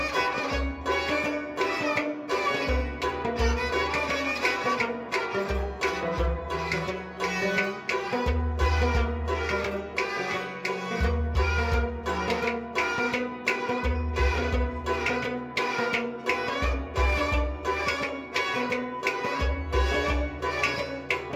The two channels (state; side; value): identical; both; correlation 1.00